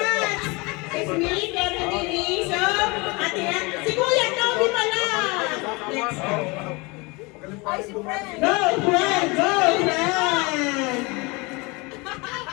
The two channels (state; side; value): quieter; right; 26.5 dB